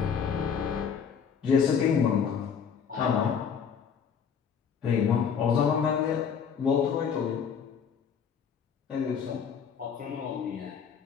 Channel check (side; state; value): right; quieter; 7.0 dB